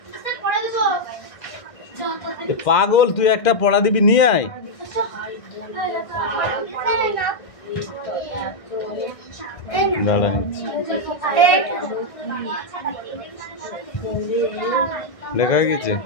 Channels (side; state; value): right; late; 1.6 ms